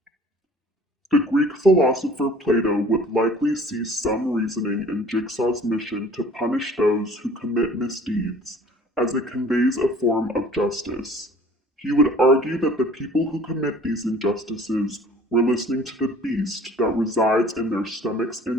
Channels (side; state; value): both; normal; correlation 0.50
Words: The Greek philosopher Plato would likely see some reasoning in Jigsaw's mission to punish those who commit misdeeds, as it conveys a form of justice. He would argue that the people who commit these injustices were listening to the beast that resides in their stomachs